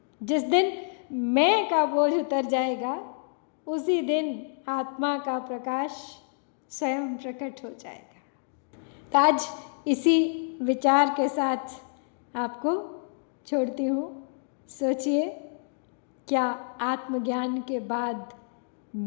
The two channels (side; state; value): right; silent; digital silence